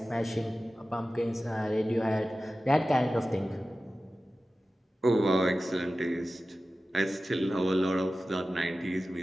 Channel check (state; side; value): normal; both; correlation 0.95